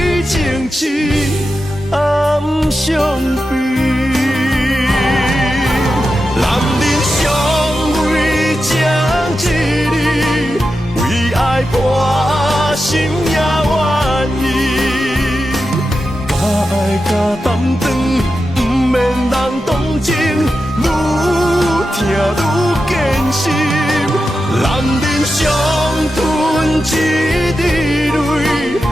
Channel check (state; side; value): normal; both; correlation 0.90